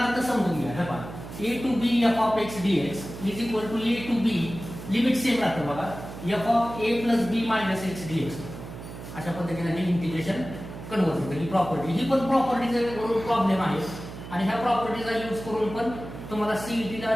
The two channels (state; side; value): noise; right; hum, 12 dB below the sound